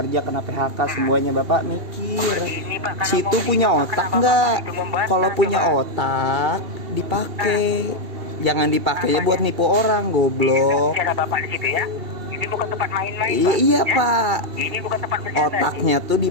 kena PHK semuanya. Bapak mikir, Ini Pak, kalau situ mau punya menerima, otak kenapa nggak? Bapak itu membantah, Kalau punya coba? otak dipakai, jangan dipakainya buat nipu orang, goblok. Cara Bapak di situ ya. Ini bukan tempat main-main Iya, Pak, iya ya? Pak, Ini bukan tempat bercanda. otaknya tuh Kalau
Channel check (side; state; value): left; late; 2.7 ms